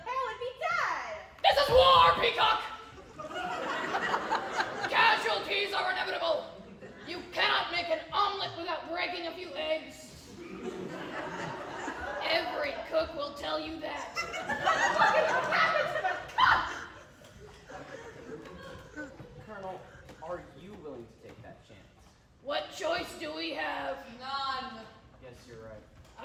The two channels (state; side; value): identical; both; correlation 1.00